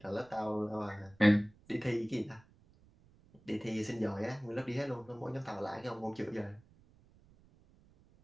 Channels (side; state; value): right; noise; rumble, 28 dB below the sound